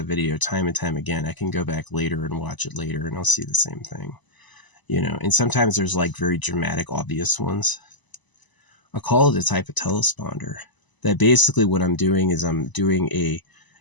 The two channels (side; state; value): right; late; 1.0 ms